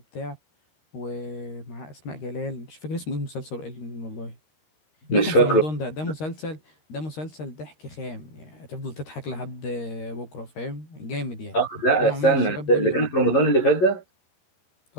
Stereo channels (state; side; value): late; right; 11 ms